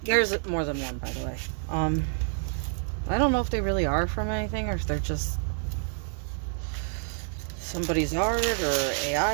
there's more than one, by the way. I don't know if they really are from anything or if they're just somebody's art or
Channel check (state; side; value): silent; left; 59 dB below the other